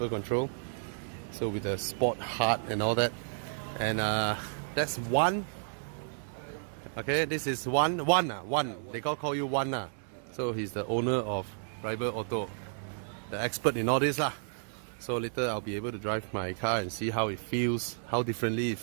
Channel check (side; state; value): left; silent; 56 dB below the other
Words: control, so with the sport hard and all that. And that's one. Okay, this is one. They call you one. So he's the owner of Rival Auto, the expert in all this lah. So later I'll be able to drive my car and see how it feels, how differently it